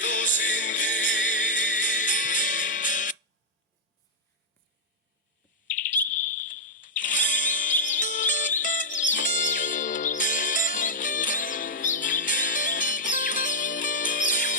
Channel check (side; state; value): both; normal; correlation -0.06